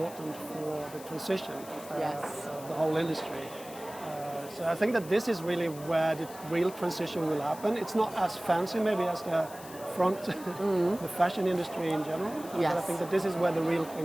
for the transition, the whole industry. So I think that this is really where the real transition will happen. It's not as fancy maybe as the front, the fashion industry in general, but I think that this is where the real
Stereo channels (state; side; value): noise; left; hiss, 17 dB below the sound